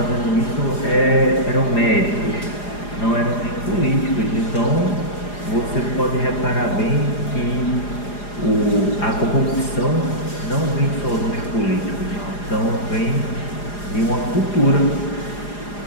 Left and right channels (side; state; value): right; late; 4.9 ms